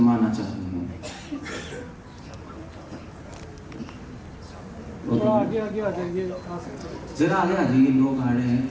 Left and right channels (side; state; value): both; identical; correlation 1.00